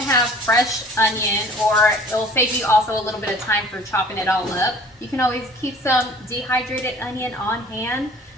have fresh onion, or it'll save you also a little bit of time for chopping it all up, you can always keep some dehydrated onion on hand.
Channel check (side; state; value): both; normal; correlation 0.49